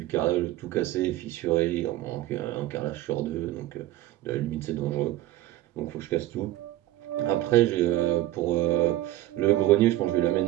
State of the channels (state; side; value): quieter; left; 15.2 dB